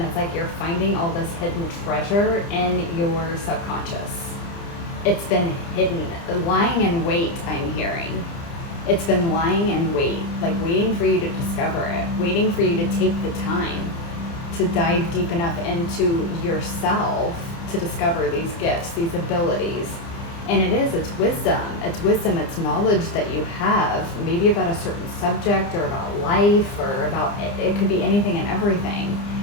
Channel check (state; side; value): late; right; 30 ms